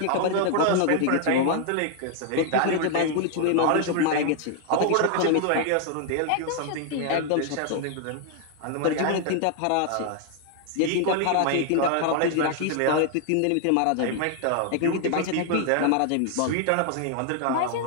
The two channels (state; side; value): different; both; correlation 0.00